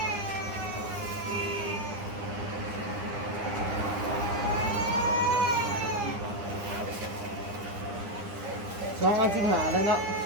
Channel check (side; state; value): left; late; 9.9 ms